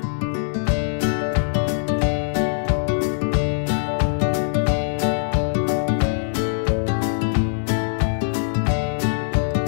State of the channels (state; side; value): silent; right; digital silence